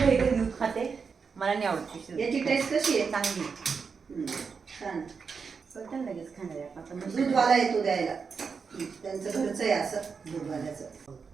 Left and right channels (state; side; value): quieter; left; 5.6 dB